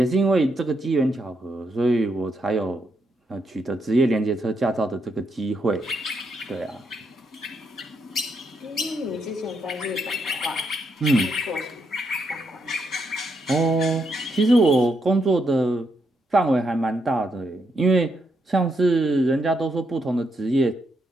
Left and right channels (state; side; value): normal; both; correlation 0.78